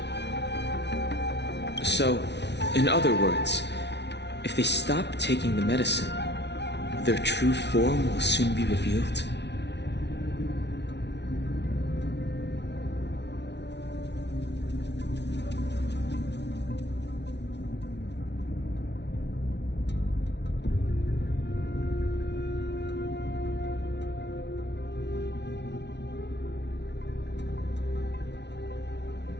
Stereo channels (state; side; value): late; right; 0.50 ms